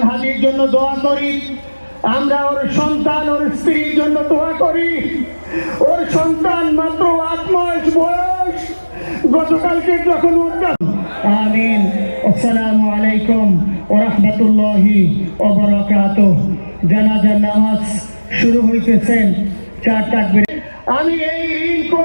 হাদির জন্য দোয়া করি। আমরা ওর সন্তান, ওর স্ত্রীর জন্য দোয়া করি। ওর সন্তান মাত্র 8 মাস বয়স, গতকালকে যখন আমিন। আসসালামু আলাইকুম ওয়া রাহমাতুল্লাহি ওয়া বারাকাতুহু। জানাজার নামাজ শুরু হইতেছেন, 4 তাকবীর। আমি এই ঋণ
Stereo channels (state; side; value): inverted; both; correlation -1.00